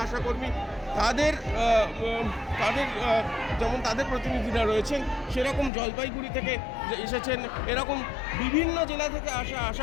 আশাকর্মী তাদের যেমন তাদের প্রতিনিধিরা রয়েছেন, সেরকম জলপাইগুড়ি থেকে এসেছেন, এরকম বিভিন্ন জেলা থেকে আসা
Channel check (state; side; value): drops out; right; at 5.7 s